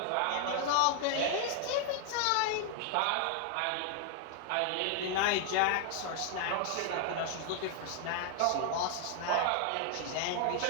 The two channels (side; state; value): both; different; correlation 0.00